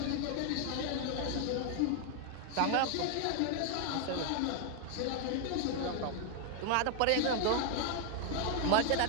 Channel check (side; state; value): both; different; correlation 0.00